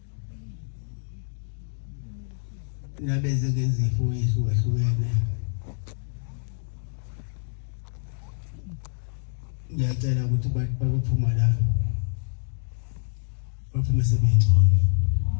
Nabeze ngezifo ezihlukahlukene. Ngiyacela ukuthi baphuma la. Baphume sebengcono.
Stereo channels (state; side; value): silent; right; digital silence